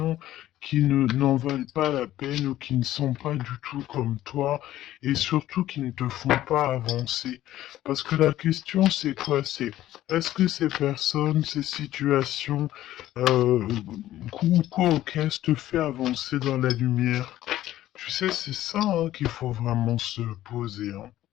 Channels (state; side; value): quieter; right; 13.9 dB